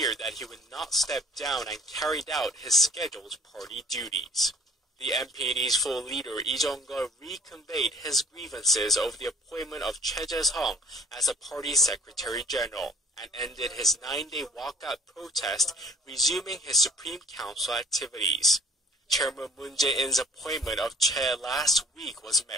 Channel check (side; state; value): both; normal; correlation 0.52